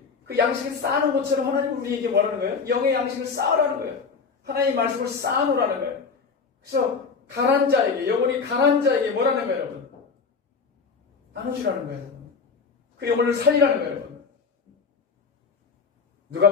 그 양식을 쌓는 것처럼 하나님 우리에게 뭐라는 거예요? 영의 양식을 쌓으라는 거예요. 하나님의 말씀을 쌓아놓으라는 거예요. 그래서 가난 자에게, 영혼이 가난 자에게 뭐라는 거예요, 여러분? 나눠주라는 거예요. 그 영혼을 살리라는 거예요, 여러분.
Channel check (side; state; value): right; quieter; 5.2 dB